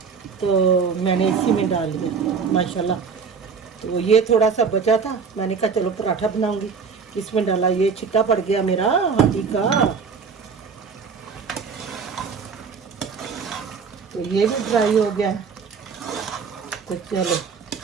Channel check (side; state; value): left; quieter; 5.7 dB